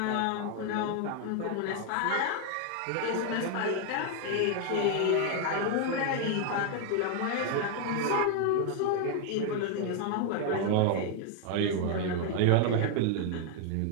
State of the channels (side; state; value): both; different; correlation 0.00